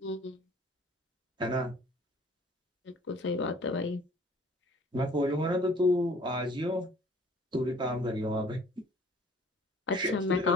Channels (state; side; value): normal; both; correlation 0.54